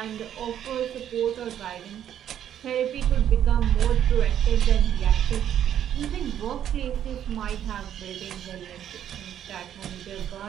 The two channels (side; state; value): left; quieter; 10.2 dB